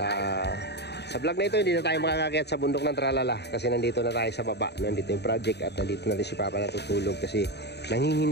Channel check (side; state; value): right; late; 0.49 ms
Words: Sa vlog na ito hindi na tayo makakakyat sa bundok ng Tralala kasi nandito na tayo sa baba. Nandito yung project at nandito na si Papa natutulog kasi